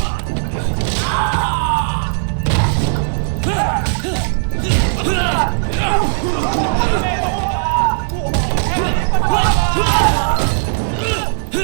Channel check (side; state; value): left; silent; digital silence